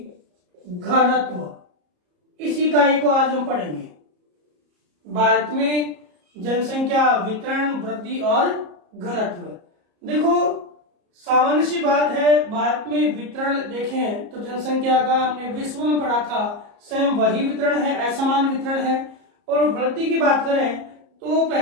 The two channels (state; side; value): late; left; 34 ms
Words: घनत्व, इस इकाई को आज हम पढ़ेंगे। भारत में जनसंख्या वितरण वृद्धि और घनत्व। देखो, सामान्य सी बात है, भारत में वितरण देखें तो जनसंख्या का हमने विश्व में पढ़ा था, सेम वही वितरण है, असमान वितरण है। और वृद्धि की बात करें तो